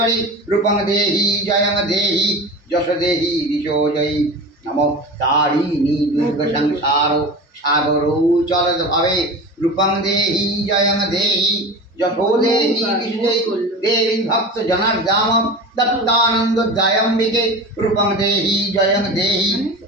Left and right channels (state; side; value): normal; both; correlation 0.31